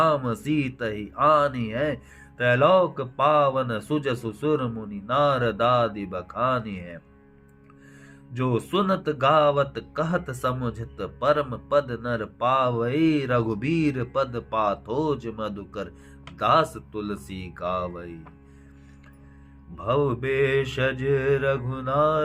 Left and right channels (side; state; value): both; identical; correlation 1.00